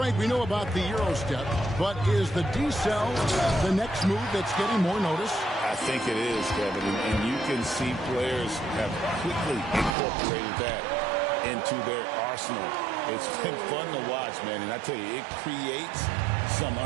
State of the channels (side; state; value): left; drops out; at 10.0 s